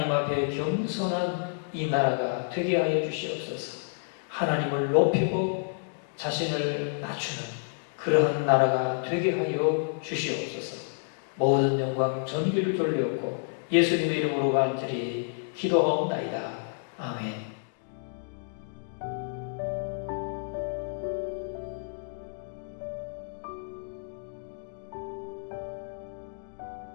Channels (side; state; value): right; silent; digital silence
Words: 앞에 겸손한 이 나라가 되게 하여 주시옵소서. 하나님을 높이고 자신을 낮추는 그러한 나라가 되게 하여 주시옵소서. 모든 영광 전기를 돌려옵고 예수님의 이름으로 간절히 기도하옵나이다. 아멘.